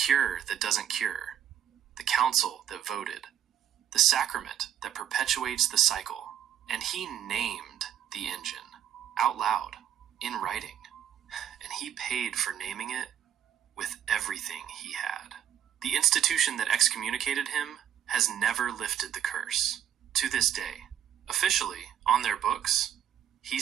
that doesn't cure, the council that voted, the sacrament that perpetuates the cycle, and he named the engine, out loud, in writing. And he paid for naming it with everything he had. The institution that excommunicated him has never lifted the curse. To this day, officially, on their books,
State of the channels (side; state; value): left; quieter; 10.1 dB